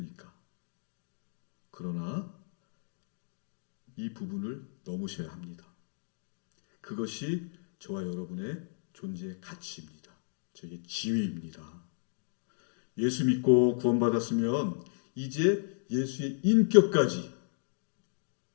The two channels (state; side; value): silent; right; digital silence